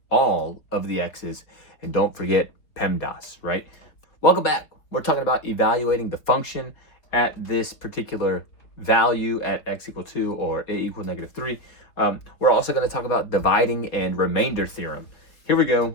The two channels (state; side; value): late; right; 4.0 ms